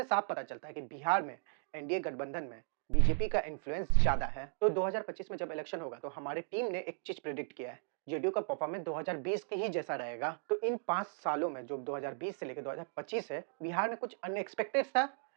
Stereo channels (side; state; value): left; silent; digital silence